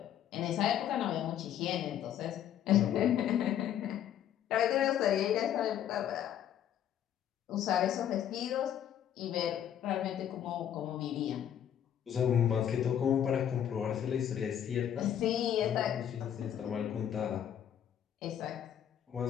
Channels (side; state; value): right; quieter; 10.1 dB